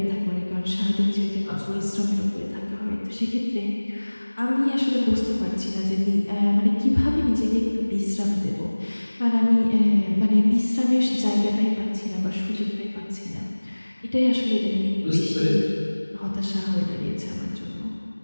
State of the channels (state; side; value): inverted; both; correlation -1.00